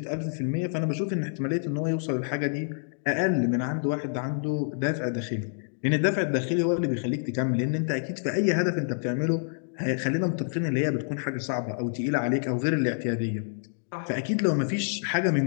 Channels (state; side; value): silent; right; digital silence